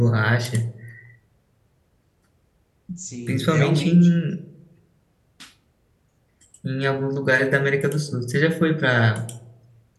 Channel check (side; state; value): both; identical; correlation 1.00